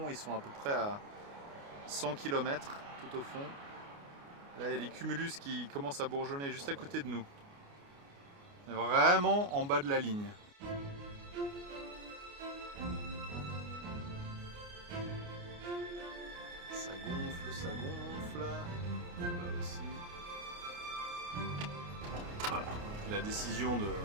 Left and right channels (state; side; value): late; left; 29 ms